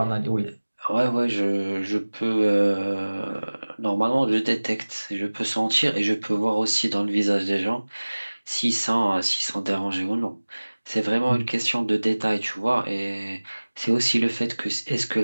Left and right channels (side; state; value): both; inverted; correlation -1.00